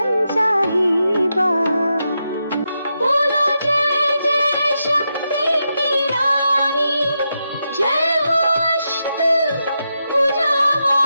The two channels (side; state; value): both; inverted; correlation -0.85